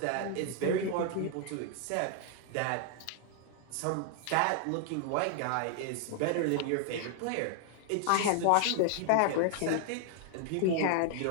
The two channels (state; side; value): different; both; correlation 0.00